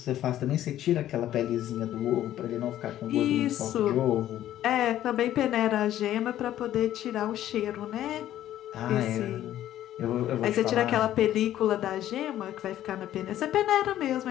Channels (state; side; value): quieter; right; 12.5 dB